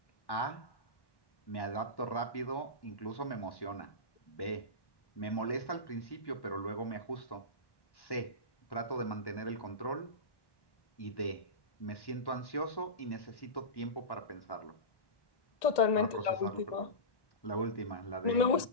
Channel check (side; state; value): right; late; 1.1 ms